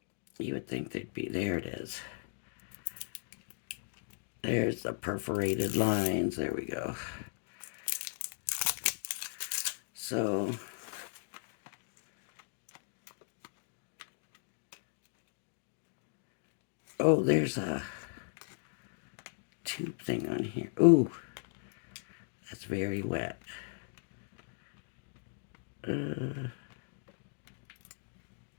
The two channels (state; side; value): silent; right; digital silence